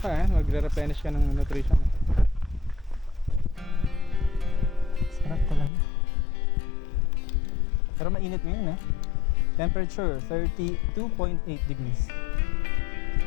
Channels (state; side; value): drops out; right; at 5.7 s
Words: magre-replenish ka ng nutrition. Sarap talaga. Pero mainit ngayon Temperature 32.8 degrees.